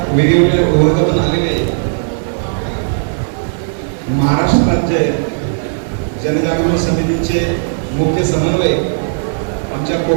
वेगवेगळ्या विभागातून आलेले महाराष्ट्र राज्य जनजागृती समितीचे मुख्य समन्वयक आमच्या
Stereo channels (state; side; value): silent; left; digital silence